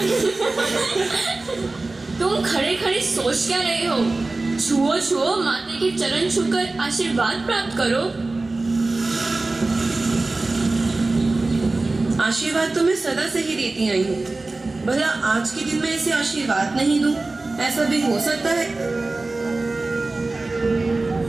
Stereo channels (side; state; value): left; quieter; 3.3 dB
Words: तुम खड़े खड़े सोच क्या रहे हो? छुओ छुओ, माते के चरण छूकर आशीर्वाद प्राप्त करो। आशीर्वाद तो मैं सदा से ही देती आई हूँ। भला आज के दिन में ऐसे आशीर्वाद नहीं दूं, ऐसा भी हो सकता है?